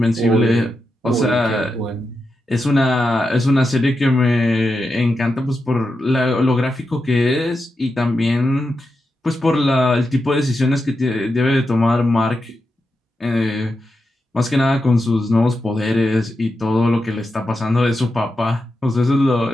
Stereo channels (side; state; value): both; normal; correlation 0.88